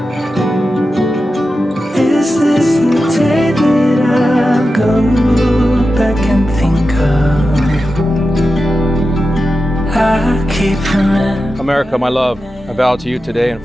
Is this the day that I'll go back and think of? I keep remembering. America, my love, I vow to you today in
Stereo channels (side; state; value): both; normal; correlation 0.91